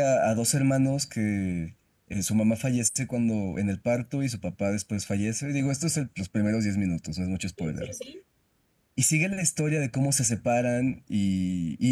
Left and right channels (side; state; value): both; identical; correlation 1.00